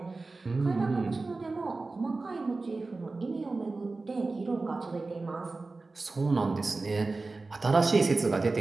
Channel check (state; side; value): quieter; left; 3.6 dB